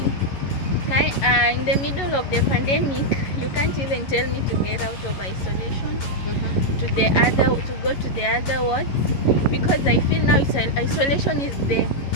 In the middle of the pandemic, you can't even tell me to get out of isolation to go to the other wards, because I feel now isolation is the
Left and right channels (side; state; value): right; late; 11 ms